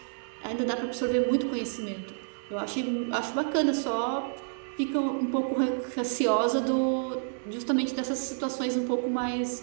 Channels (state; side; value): silent; left; 58 dB below the other